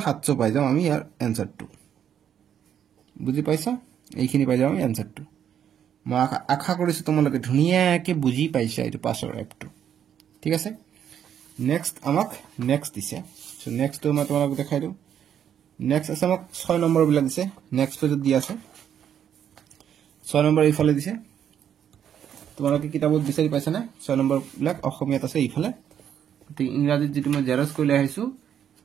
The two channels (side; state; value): left; quieter; 9.2 dB